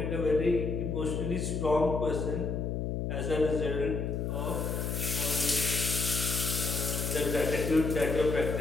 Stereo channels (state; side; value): noise; left; hum, 1 dB below the sound